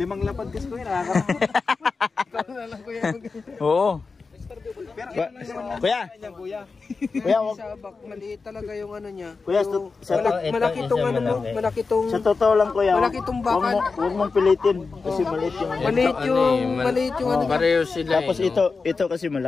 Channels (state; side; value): quieter; right; 4.4 dB